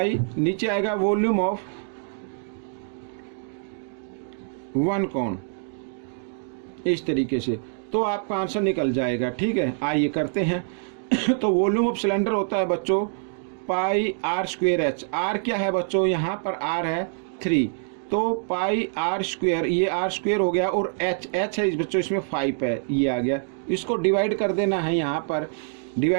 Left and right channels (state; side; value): silent; left; digital silence